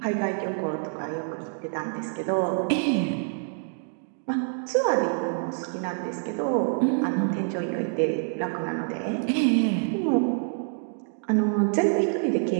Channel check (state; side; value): silent; left; 60 dB below the other